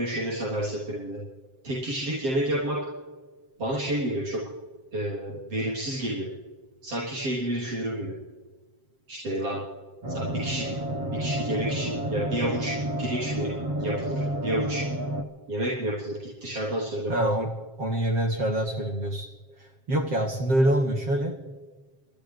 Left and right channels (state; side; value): late; left; 7.5 ms